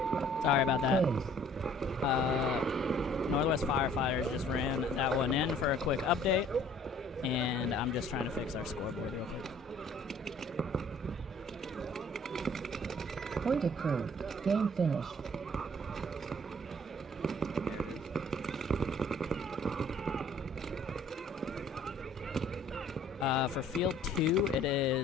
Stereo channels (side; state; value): both; normal; correlation 0.56